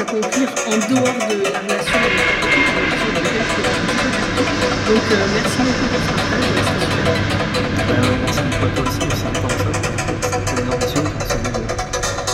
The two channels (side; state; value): both; identical; correlation 1.00